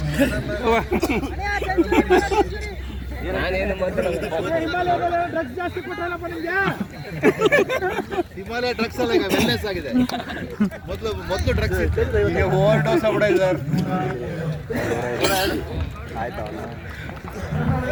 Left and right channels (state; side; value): identical; both; correlation 1.00